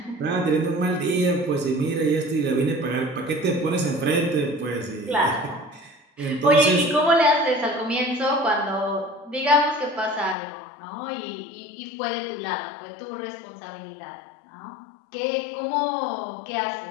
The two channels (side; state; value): right; drops out; at 10.4 s